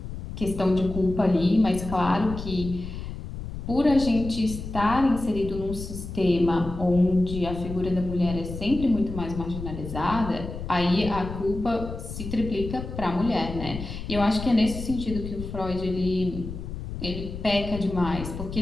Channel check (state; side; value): noise; left; rumble, 8 dB below the sound